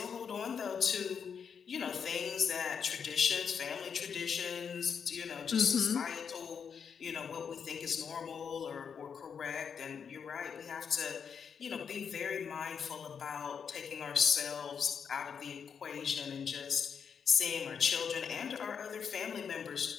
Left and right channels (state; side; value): quieter; right; 6.8 dB